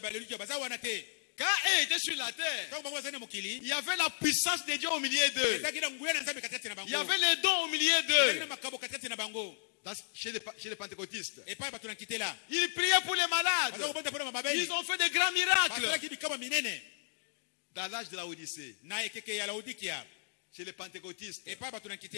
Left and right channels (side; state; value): right; silent; digital silence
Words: Quand eux étaient sur la terre, il y avait la puissance de Dieu au milieu d'eux. Il y avait les dons au milieu d'eux. Chez les pentecôtistes, ils priaient pour les malades. Ils ont fait des grands miracles. Dans l'âge de la Odyssée, chez les pentecôtistes,